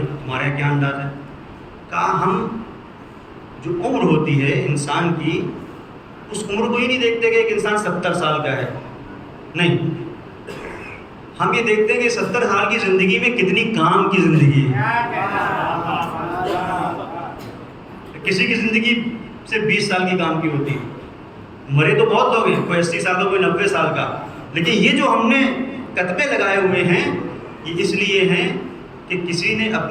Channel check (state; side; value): identical; both; correlation 1.00